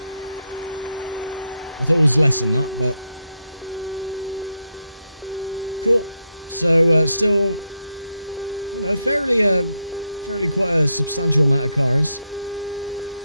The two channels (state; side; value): inverted; both; correlation -0.82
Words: I thought it was less than that, but... Cool. So, still, you know, fairly quite a substantial amount of cars